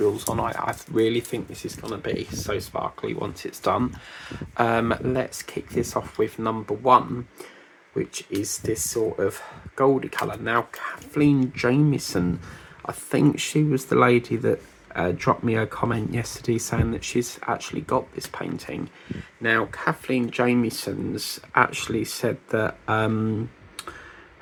on. I really think this is going to be so sparkly once it's done. Let's kick this off with number one, which is this sort of goldy colour. Now, Kathleen Jamieson, I think she was the lady that dropped me a comment yesterday saying that she's actually got this painting. Now, Kathleen Jamieson's actually said that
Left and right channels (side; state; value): both; identical; correlation 1.00